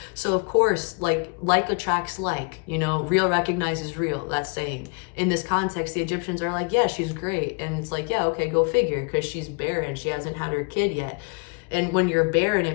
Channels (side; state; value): right; quieter; 34.5 dB